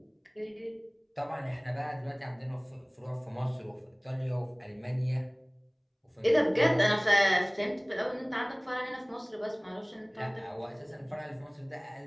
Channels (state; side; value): identical; both; correlation 1.00